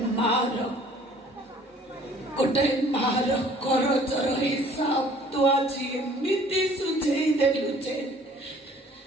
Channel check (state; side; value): normal; both; correlation 0.54